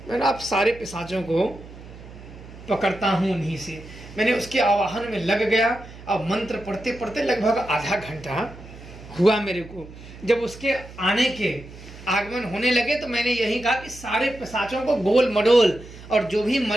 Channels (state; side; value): noise; right; hum, 17 dB below the sound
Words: मैंने आप सारे पिशाचों को पकड़ता हूँ उन्हीं से। मैंने उसके आवाहन में लग गया, अब मंत्र पढ़ते पढ़ते लगभग आधा घंटा हुआ मेरे को। जब उसके आने के आगमन होने लगे तो मैंने यही कहा कि सारे पिशाचों को गोल मडोल, और जो भी